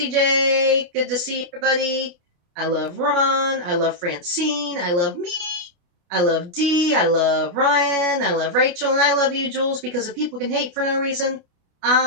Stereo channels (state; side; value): late; left; 29 ms